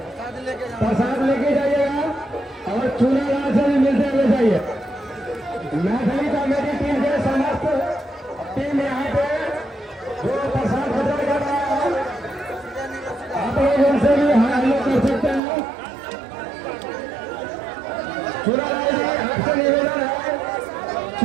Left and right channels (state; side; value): drops out; left; at 15.4 s